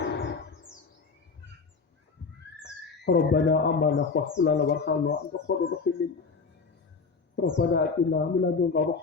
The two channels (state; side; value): quieter; right; 4.8 dB